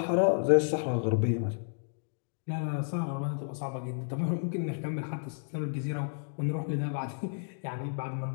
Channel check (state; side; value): silent; right; digital silence